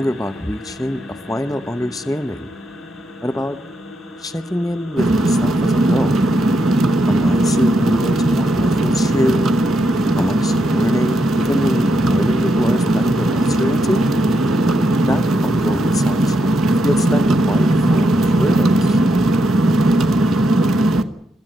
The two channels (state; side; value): normal; both; correlation 0.81